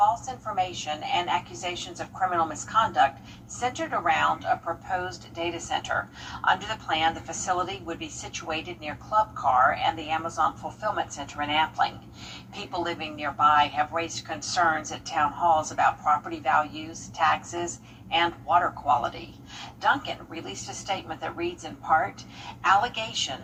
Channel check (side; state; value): both; identical; correlation 1.00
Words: information and accusations of criminal misconduct centered around a proposed data center. Under the plan, the facility would be situated near Club Car and the Amazon Fulfillment Center in Appling. People living nearby have raised concerns at town halls about property values, taxes, and water quality. Duncan released a statement that reads in part,